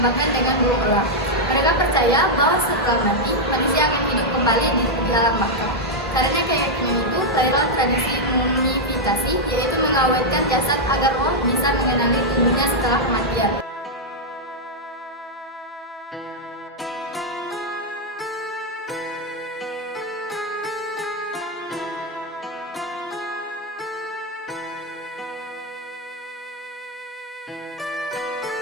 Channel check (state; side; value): normal; both; correlation -0.02